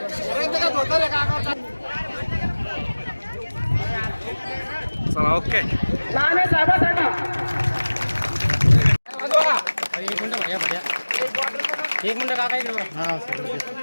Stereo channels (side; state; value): both; inverted; correlation -1.00